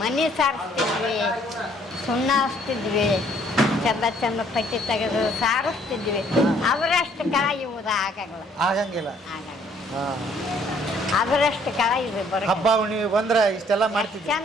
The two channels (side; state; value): both; normal; correlation 0.63